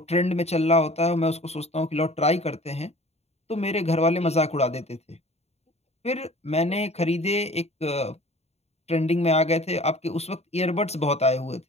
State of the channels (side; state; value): right; late; 0.31 ms